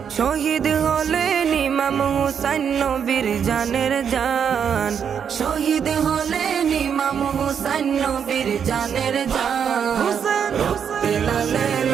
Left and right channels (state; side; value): quieter; left; 7.6 dB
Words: শহীদ হলেন ইমাম হুসাইন নবীর জানের জান। শহীদ হলেন ইমাম হুসাইন নবীর জানের জান। রক্তে লালে